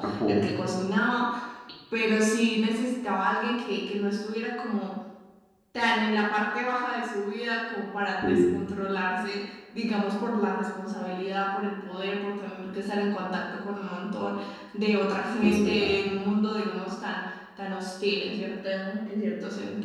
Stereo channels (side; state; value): both; identical; correlation 1.00